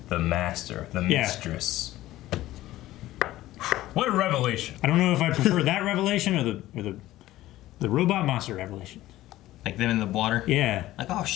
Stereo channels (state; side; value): quieter; right; 15.6 dB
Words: the master, the mistress. What a revelation. I don't know if I prefer that revelation or the robot monster revelation. Like them in the water? Yeah. Like, oh